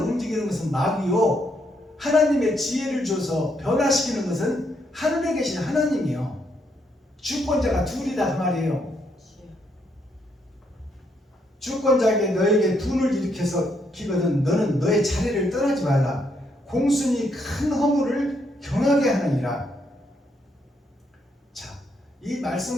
움직이는 것은 마귀요, 하나님의 지혜를 줘서 변화시키는 것은 하늘에 계신 하나님이요. 주권자가 둘이다 그 말이에요. 주권자에게 너에게 분을 일으켜서 기거든 너는 너의 자리를 떠나지 말라. 공순이 큰 허물을 경하게 하느니라. 자, 이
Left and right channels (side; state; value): both; normal; correlation 0.75